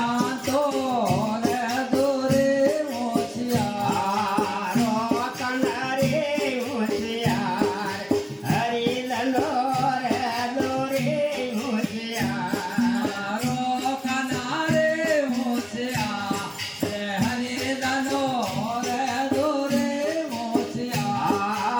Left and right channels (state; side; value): identical; both; correlation 1.00